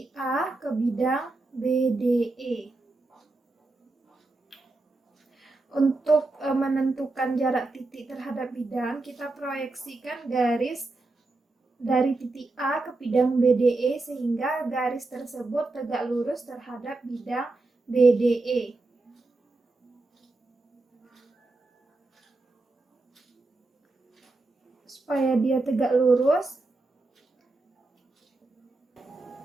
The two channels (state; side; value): quieter; left; 3.2 dB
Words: A ke bidang BDE. Untuk menentukan jarak titik terhadap bidang, kita proyeksikan garis dari titik A ke bidang BDE sehingga garis tersebut tegak lurus terhadap bidang BDE. Supaya dia tegak lurus,